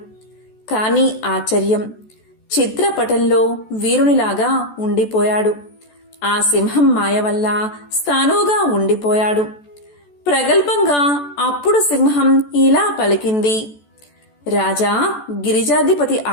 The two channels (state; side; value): late; right; 14 ms